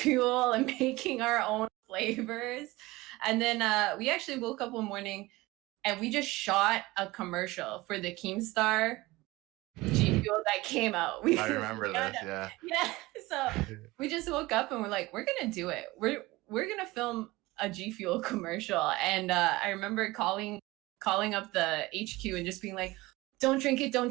and making our own flavors. And then we actually woke up one morning and we just shot a commercial for the Keemstar G Fuel that came out. I We remember got this. Yeah. yeah. So we just woke up and we're like, we're gonna do it. We're gonna film a G Fuel commercial. And I remember calling up the HQ and just being like, don't drink it, don't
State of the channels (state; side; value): quieter; left; 20.4 dB